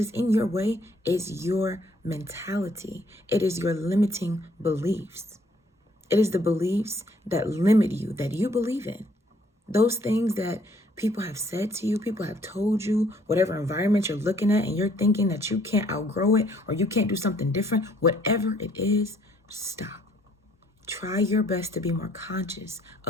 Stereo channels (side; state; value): both; normal; correlation 0.64